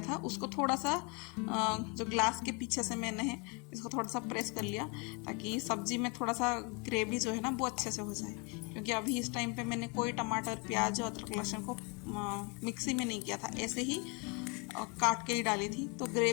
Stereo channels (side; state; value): right; quieter; 31.7 dB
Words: था उसको थोड़ा सा जो ग्लास के पीछे से मैंने इसको थोड़ा सा प्रेस कर लिया, ताकि सब्जी में थोड़ा सा ग्रेवी जो है ना वो अच्छे से हो जाए। क्योंकि अभी इस टाइम पे मैंने कोई टमाटर, प्याज और अदरक लहसुन को मिक्सी में नहीं किया था, ऐसे ही काट के ही डाली थी, तो